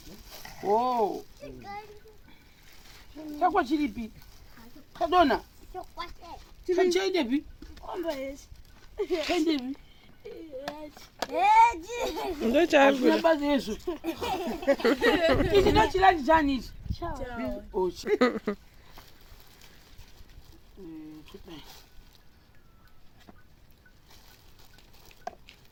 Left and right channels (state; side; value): identical; both; correlation 1.00